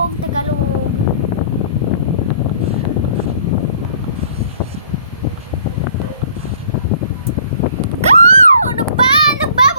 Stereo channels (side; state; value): both; inverted; correlation -0.55